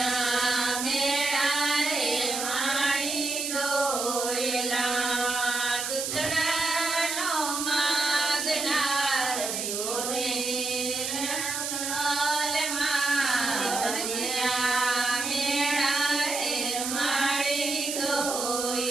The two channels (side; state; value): right; noise; hiss, 3 dB below the sound